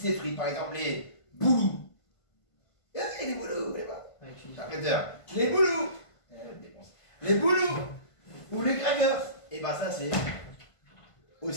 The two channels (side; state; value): right; late; 1.5 ms